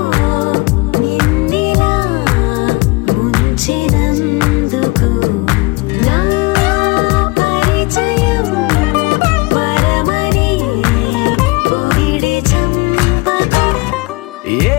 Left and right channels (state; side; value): quieter; right; 25.0 dB